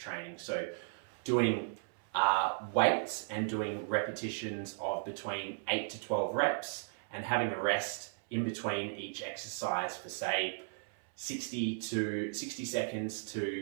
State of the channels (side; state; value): left; silent; 54 dB below the other